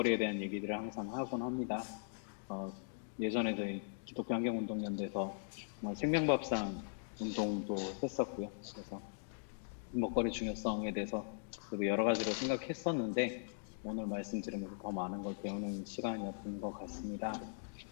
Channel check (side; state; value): right; silent; digital silence